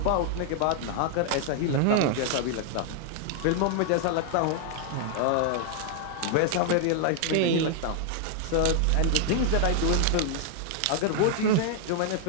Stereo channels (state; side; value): different; both; correlation 0.00